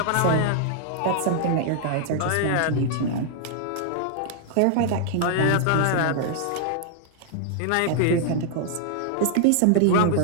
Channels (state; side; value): different; both; correlation -0.01